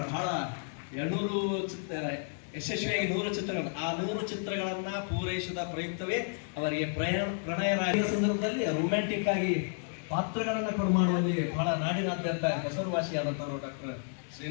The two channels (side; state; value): right; silent; 57 dB below the other